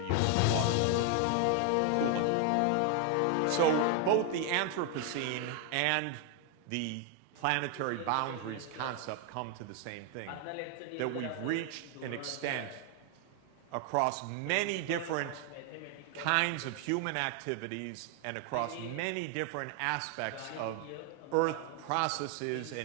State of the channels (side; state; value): both; different; correlation 0.00